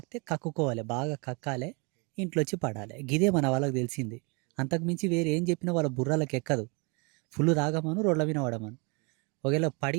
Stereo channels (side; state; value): left; quieter; 31.7 dB